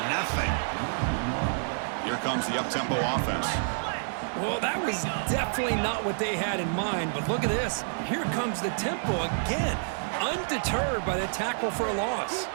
nothing. Here comes the up-tempo offense. Well, that was definitely not what they had in mind, but look at this. Here comes the tempo again, undeterred by the tackle for a loss.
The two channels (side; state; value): left; silent; digital silence